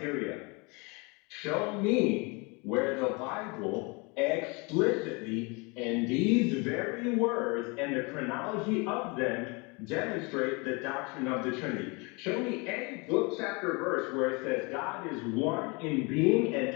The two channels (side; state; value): right; quieter; 29.2 dB